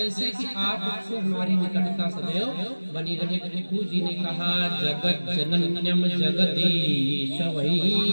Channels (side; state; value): both; inverted; correlation -1.00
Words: कि आपसे हमारी निकटता सदैव बनी रहे। पृथु जी ने कहा, जगत जनन्यम जगदीश